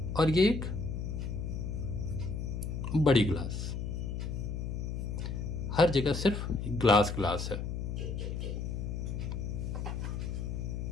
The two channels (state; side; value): noise; left; hum, 3 dB below the sound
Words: और ये एक बड़ी ग्लास, हर जगह सिर्फ ग्लास ग्लास है।